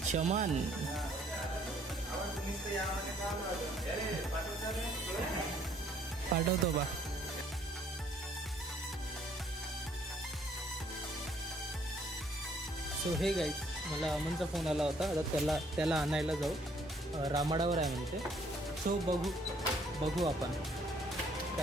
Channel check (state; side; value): normal; both; correlation 0.64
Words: पाठवतो बा. सो हे गाईज, मला अमनचा फोन आला होता. आता त्याला आणायला जाऊ. रामाडावर आहे म्हणते. सो बघू आपण